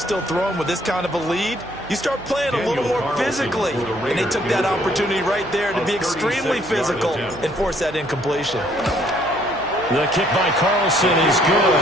still throwing with this kind of a lead, you start playing a little more physically. And they took that opportunity right there to be extremely physical and force that incompletion. The kick by Carlson is good.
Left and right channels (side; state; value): right; noise; hum, 17 dB below the sound